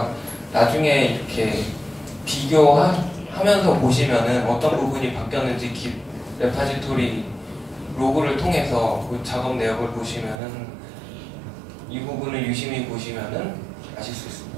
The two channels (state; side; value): drops out; left; at 10.4 s